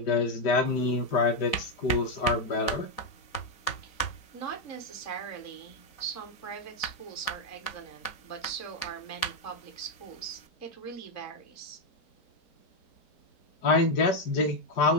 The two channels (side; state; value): right; late; 4.1 ms